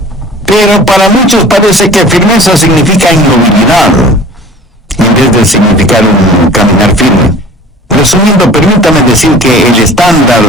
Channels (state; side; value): normal; both; correlation 0.44